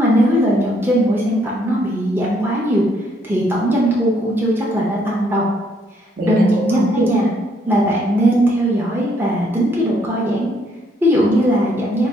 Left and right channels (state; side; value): normal; both; correlation 0.69